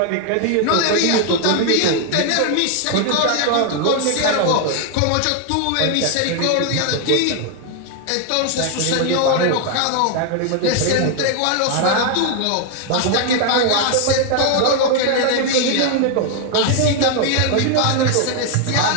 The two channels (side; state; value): both; different; correlation 0.00